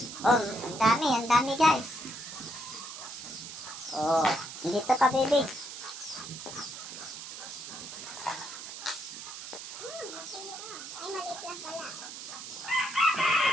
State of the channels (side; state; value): right; noise; hiss, 10 dB below the sound